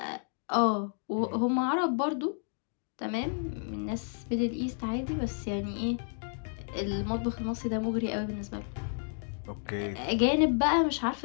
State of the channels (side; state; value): right; silent; 57 dB below the other